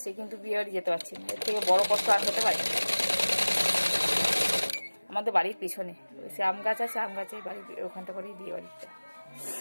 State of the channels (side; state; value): both; inverted; correlation -1.00